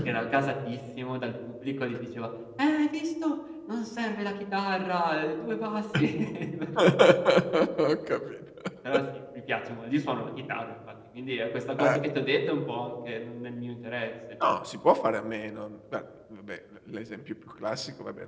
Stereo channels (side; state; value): both; identical; correlation 1.00